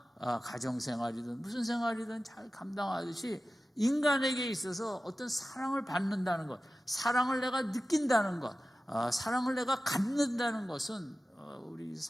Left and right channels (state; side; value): normal; both; correlation 0.95